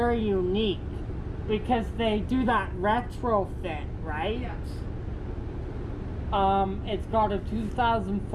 unique because they do that retrofit, right? Yeah. It's got a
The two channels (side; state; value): both; identical; correlation 1.00